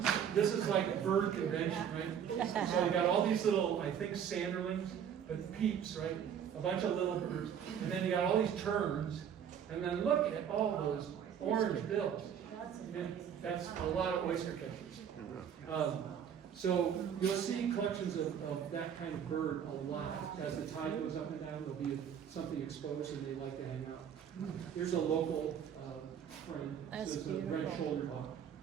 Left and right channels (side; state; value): left; quieter; 8.5 dB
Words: this is like bird convention, right? So you got all these little, I think, sanderlings, but peeps, right? A bunch of little birds. And then you got all these terns. And then look at all those orange bills. And that's a lot of oyster catchers. So you'll see collections of that kind of bird a lot. As the tide goes up and down, there'll be something exposed and they like to hang out. Here's a local friend. This is a red-shouldered hawk.